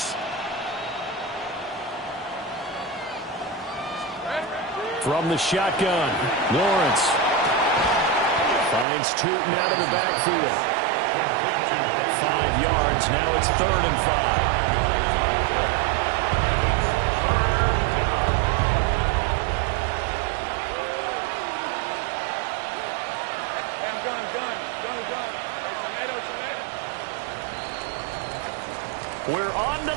From the shotgun, Lawrence finds Tootin out of the backfield. 5 yards. Now it's 3rd and 5. We're on to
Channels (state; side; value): drops out; left; at 8.8 s